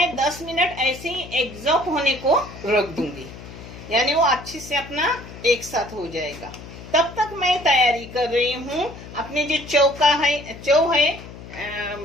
10 मिनट ऐसे ही एग्जॉस्ट होने को रख दूंगी, यानी वो अच्छे से अपना एक साथ हो जाएगा। तब तक मैं तैयारी कर रही हूँ अपने जो चौ है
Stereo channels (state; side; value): noise; left; hum, 15 dB below the sound